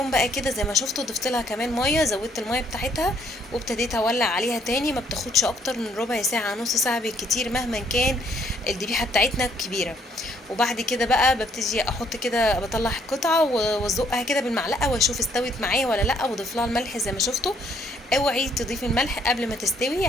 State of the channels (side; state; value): both; normal; correlation 0.66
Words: بقى كده زي ما شفتوا ضفت لها كمان ميه، زودت الميه بتاعتها وابتديت اولع عليها تاني. ما بتاخدش اكتر من ربع ساعه نص ساعه بالكتير مهما كان الذبيحه بتاعتنا كبيره. وبعد كده بقى ببتدي احط كده، بطلع قطعه وازقها كده بالمعلقه واشوف استوت معايا ولا لا، واضيف لها الملح زي ما شفتوا. اوعي تضيفي الملح قبل ما تستوي،